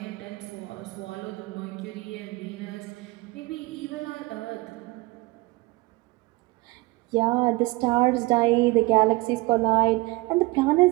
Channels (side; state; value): left; quieter; 23.1 dB